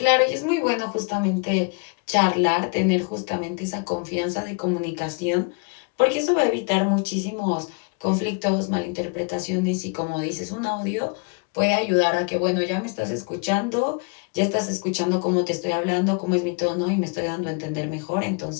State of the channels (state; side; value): quieter; right; 33.4 dB